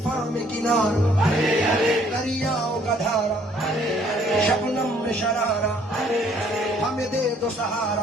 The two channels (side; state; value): both; normal; correlation 0.62